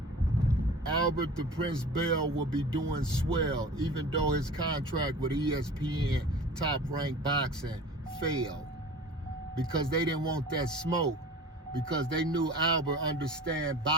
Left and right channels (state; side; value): normal; both; correlation 0.40